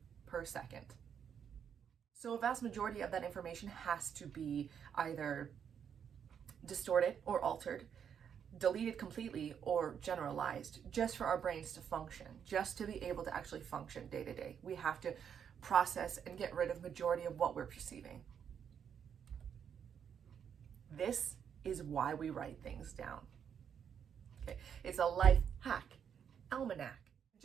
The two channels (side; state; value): left; quieter; 7.9 dB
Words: per second. So a vast majority of that information has to be either distorted or altered, deleted completely, or generalized, just for our brains to function, just to be able to actually function day to day. We have to process and get rid of majority of what we're perceiving. This is why we write things down. Okay, it's a life hack, almanac.